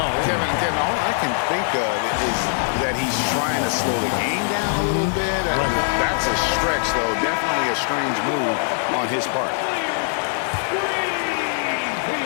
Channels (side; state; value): right; silent; 59 dB below the other